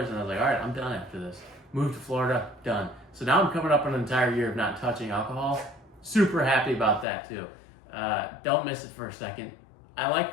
and I was like, all right, I'm done after this. Moved to Florida, done. So now I'm coming up on an entire year of not touching alcohol. Super happy about that too. Don't miss it for a second. I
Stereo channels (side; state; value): right; drops out; at 7.1 s